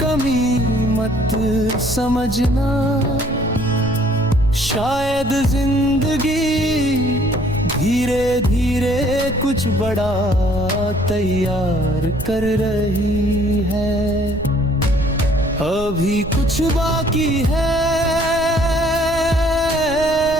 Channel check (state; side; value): noise; right; rumble, 11 dB below the sound